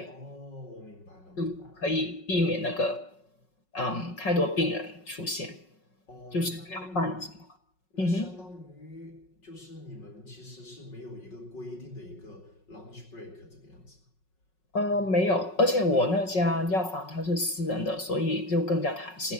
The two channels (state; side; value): late; right; 5.4 ms